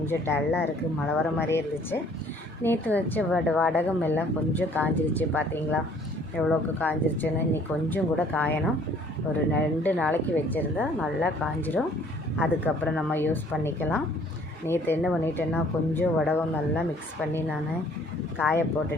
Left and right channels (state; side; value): normal; both; correlation 0.58